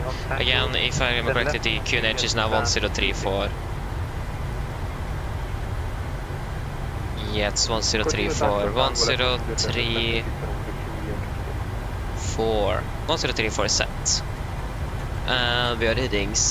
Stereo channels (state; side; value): identical; both; correlation 1.00